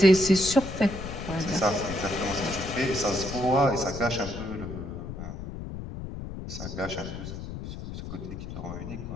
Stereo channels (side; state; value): left; noise; rumble, 8 dB below the sound